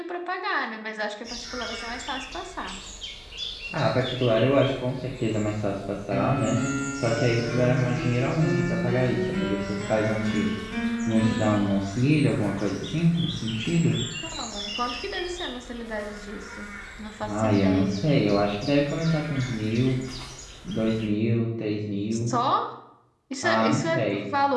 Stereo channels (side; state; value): both; identical; correlation 1.00